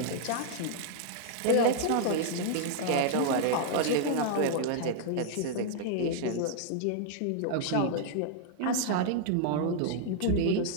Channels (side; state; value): both; different; correlation -0.01